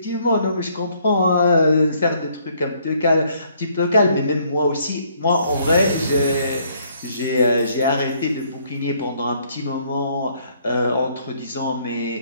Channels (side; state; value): both; inverted; correlation -0.66